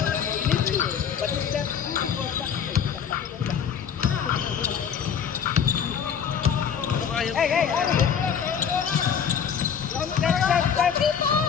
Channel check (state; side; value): quieter; right; 7.6 dB